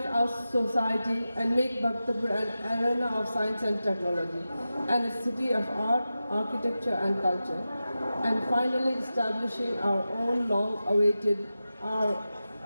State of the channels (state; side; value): inverted; both; correlation -0.93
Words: our society and make Bhaktapur an arena of science and technology and a city of art, architecture and culture. And finally establishing our own long-awaited our